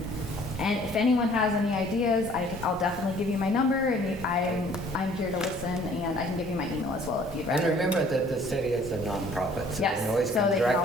if anyone has any ideas, I'll definitely give you my number, and I'm here to listen, and I can give you my email as well if you'd rather. And remember that the city is a nonprofit, so Yes, they can always so come they can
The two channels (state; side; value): normal; both; correlation 0.56